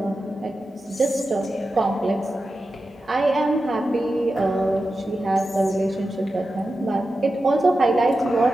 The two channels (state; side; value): normal; both; correlation 0.92